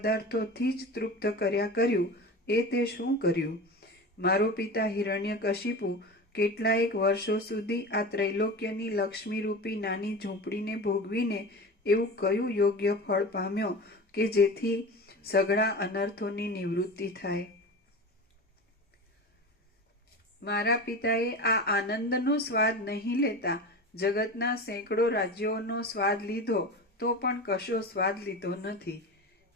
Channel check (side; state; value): both; normal; correlation 0.30